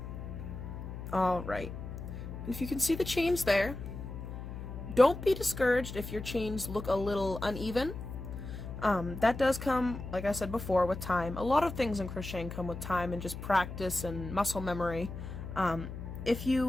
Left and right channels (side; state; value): left; noise; hum, 9 dB below the sound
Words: Alright, if you can see the chains there, don't be discouraged if your chains look a little uneven. That does come, like I said before, with time. A lot of things in crocheting come with time and just practice and muscle memory. If